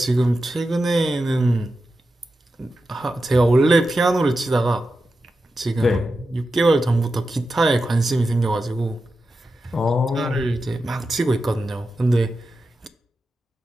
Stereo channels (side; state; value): both; normal; correlation 0.90